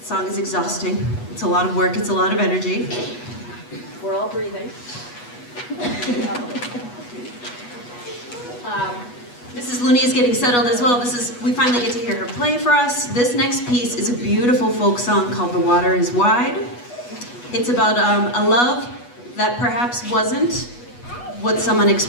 song is exhausting. It's a lot of work, it's a lot of energy. We're all breathing. Mrs. Looney is getting settled as well. We finally get to hear her play for us. This next piece is a beautiful folk song called The Water is Wide. It's about a love that perhaps wasn't what someone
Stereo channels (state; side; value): late; right; 8.2 ms